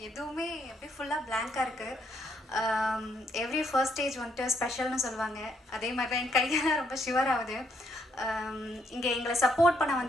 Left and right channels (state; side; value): normal; both; correlation 0.73